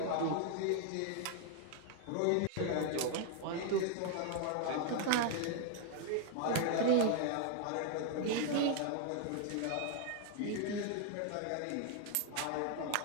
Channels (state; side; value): different; both; correlation 0.00